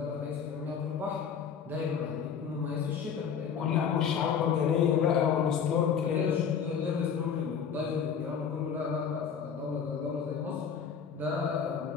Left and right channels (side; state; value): right; quieter; 7.1 dB